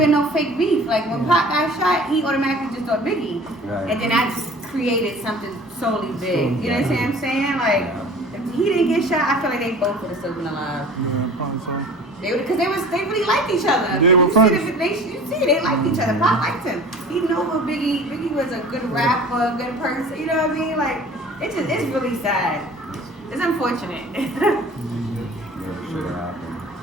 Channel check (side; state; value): both; normal; correlation 0.44